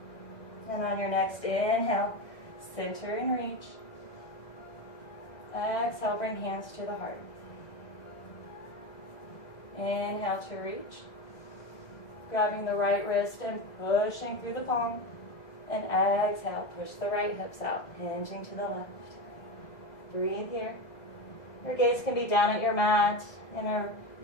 And on your next inhale, center and reach. Exhale, bring hands to the heart. Inhale to reach. Grabbing the right wrist and pushing through the palm. And exhale, push the right hips out, hinging to the left. Breathe here. Your gaze can be down at your mat in a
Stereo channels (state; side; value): late; right; 1.6 ms